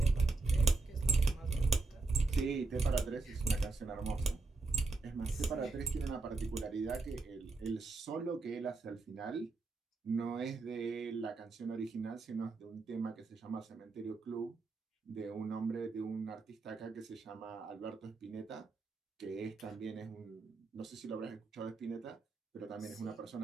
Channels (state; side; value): quieter; left; 3.7 dB